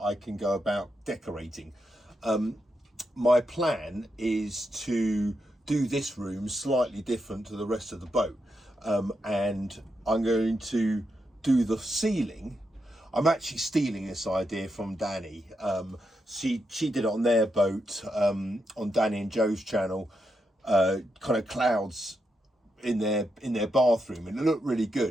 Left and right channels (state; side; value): normal; both; correlation 0.84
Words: can go about decorating. My plan is to do this room slightly different to the rest of the boat. And I'm going to do the ceiling. I'm actually stealing this idea from Danny. She did it on their boat, on Danny and Joe's channel, kind of clouds in their bathroom, and it looked really